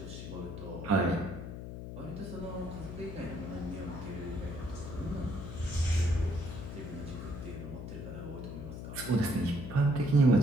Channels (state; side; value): noise; left; hum, 8 dB below the sound